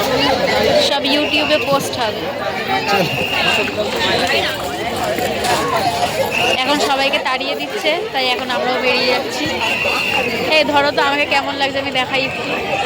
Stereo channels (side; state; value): both; identical; correlation 1.00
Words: সব ইউটিউবে পোস্ট হবে। এখন সবাইকে তাড়িয়ে দিচ্ছে, তাই এখন আমরাও বেরিয়ে যাচ্ছি। এই ধরো তো, আমাকে কেমন লাগছে আমি দেখাই একটু।